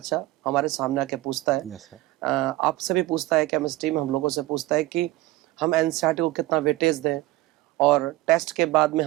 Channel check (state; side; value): quieter; left; 18.3 dB